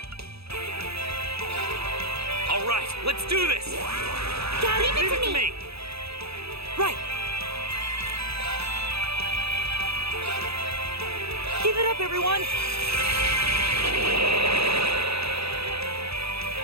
All right, let's do this! Leave it to me! Right! Keep it up, everyone!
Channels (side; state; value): left; late; 0.78 ms